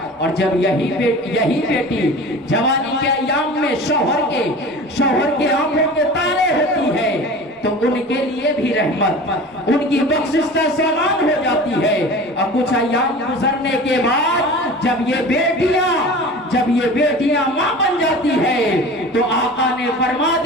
और जब यही बेटी जवानी के अय्याम में शौहर के आंखों के तारे होती है तो उनके लिए भी रहमत, उनकी बख्शिश का सामान हो जाती है। और कुछ अय्याम गुजरने के बाद जब ये बेटियां मां बन जाती है तो आका ने फरमा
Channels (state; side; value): normal; both; correlation 0.37